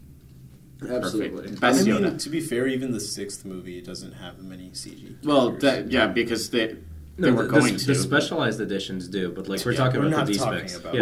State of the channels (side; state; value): both; identical; correlation 1.00